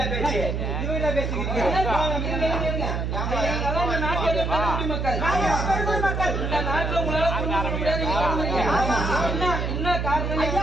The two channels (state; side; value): noise; right; hum, 1 dB below the sound